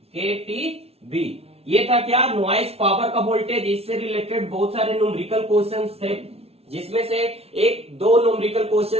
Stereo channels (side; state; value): left; late; 0.30 ms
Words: ये था क्या? नॉइज पावर का वोल्टेज। इससे रिलेटेड बहुत सारे न्यूमेरिकल क्वेश्चंस थे, जिसमें से एक दो न्यूमेरिकल